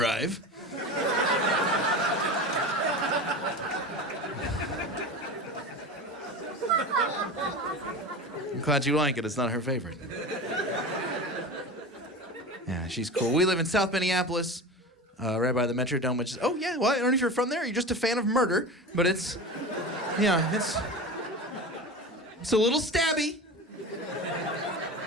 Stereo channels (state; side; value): normal; both; correlation 0.29